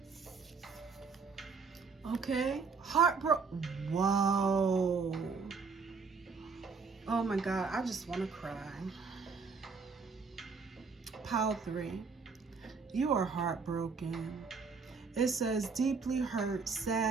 Okay, whoa. Oh my God, I just want to cry. Pile 3, you are heartbroken. It says deeply hurt,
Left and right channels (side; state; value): left; quieter; 5.0 dB